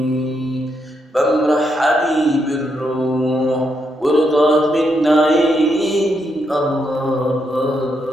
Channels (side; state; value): both; normal; correlation 0.79